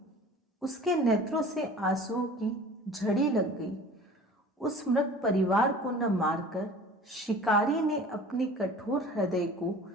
उसके नेत्रों से आंसुओं की झड़ी लग गई। उस मृग परिवार को न मारकर शिकारी ने अपने कठोर हृदय को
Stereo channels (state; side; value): normal; both; correlation 0.43